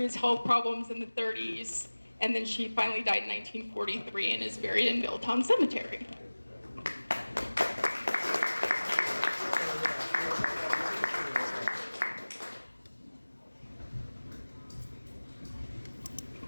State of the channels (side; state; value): both; inverted; correlation -1.00